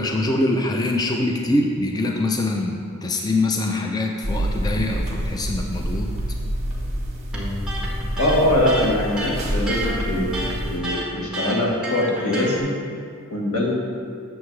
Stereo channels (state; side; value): normal; both; correlation 0.48